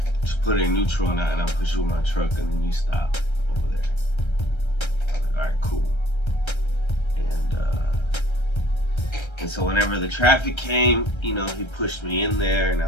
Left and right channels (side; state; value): right; late; 1.3 ms